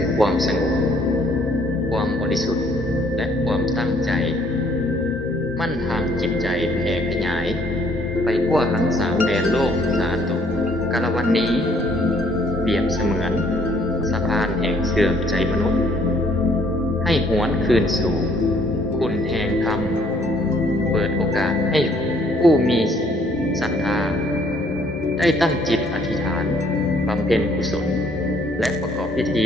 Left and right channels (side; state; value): both; normal; correlation 0.63